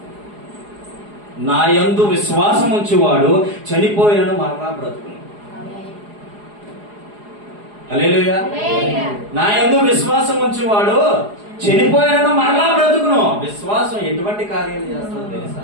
నా యందు విశ్వాసం ఉంచేవాడు చనిపోయినను మరలా బ్రతుకును. హల్లెలూయా. నా యందు విశ్వాసం ఉంచేవాడు చనిపోయినను మరలా బ్రతుకును. విశ్వాసం ఎటువంటి కార్యాలు చేస్తుందో తెలుసా?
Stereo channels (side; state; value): left; late; 4.8 ms